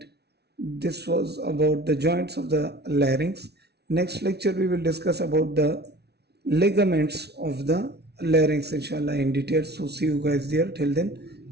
This was about the joints of the larynx. Next lecture we will discuss about the ligaments of the larynx, inshallah, in detail. So see you guys there. Till then,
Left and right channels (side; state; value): left; late; 0.49 ms